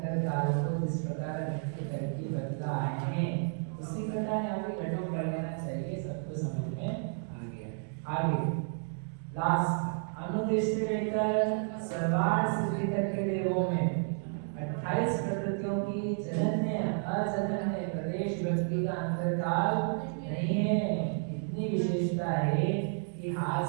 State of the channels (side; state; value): left; silent; 57 dB below the other